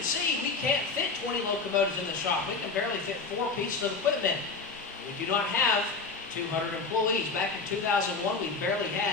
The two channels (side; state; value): right; quieter; 4.4 dB